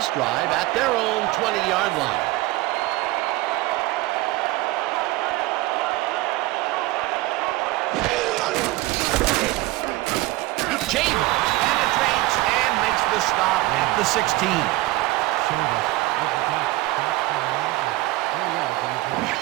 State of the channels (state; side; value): quieter; left; 19.3 dB